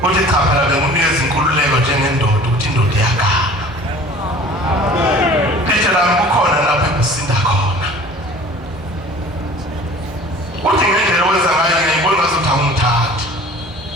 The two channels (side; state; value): both; normal; correlation 0.46